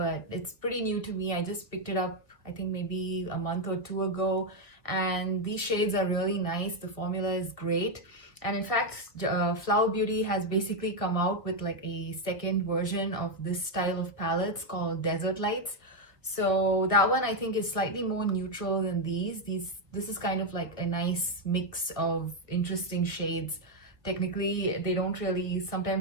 it's pretty new to me. I just picked it up I think maybe a month or two ago, and these shades are really nice. The formula is great. And in fact, Flower Beauty has basically come out with like a second version of this style of palettes called Desert Lights. So that one I think is slightly more neutral than these. This is kind of like a nice mix of interesting shades. Technically, they don't really,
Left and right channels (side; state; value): right; late; 1.4 ms